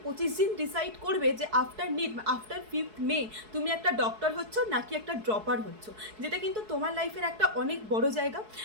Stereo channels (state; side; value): late; left; 4.7 ms